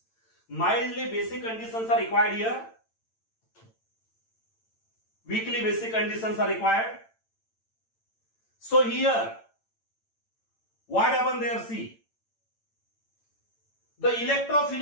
Mildly basic conditions are required here. Weakly basic conditions are required. So here, What happened there? See, the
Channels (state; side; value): late; right; 8.9 ms